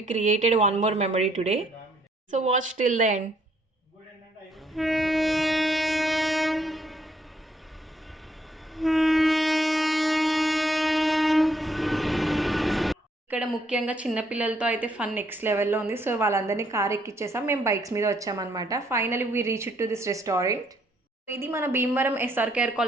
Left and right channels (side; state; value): both; normal; correlation 0.69